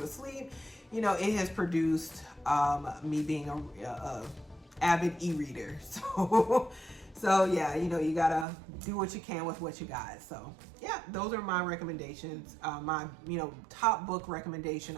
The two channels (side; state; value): left; drops out; at 8.5 s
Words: sleep, you know, it has produced me being a avid e-reader. So yeah, you know, you gotta do what you can with what you got. So yeah, those are my recommendations. My, you know, top book recommendation,